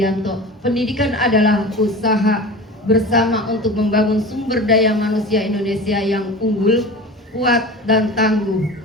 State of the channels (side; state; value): both; normal; correlation 0.34